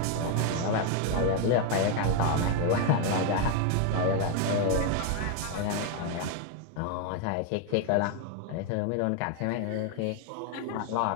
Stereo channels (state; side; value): different; both; correlation 0.01